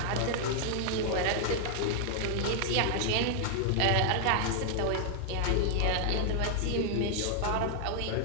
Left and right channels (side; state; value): both; different; correlation 0.00